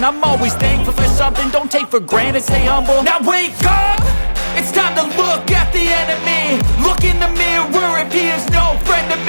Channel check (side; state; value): both; inverted; correlation -1.00